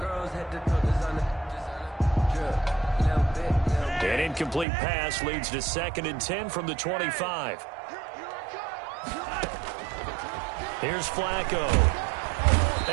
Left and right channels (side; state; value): left; drops out; at 4.7 s